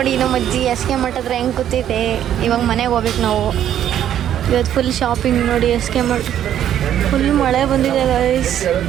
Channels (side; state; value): left; quieter; 10.7 dB